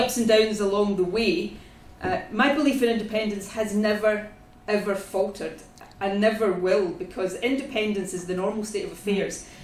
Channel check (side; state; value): both; identical; correlation 1.00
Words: and downs along the way, my belief in independence has never ever faltered and never will, because independence is the normal state of affairs.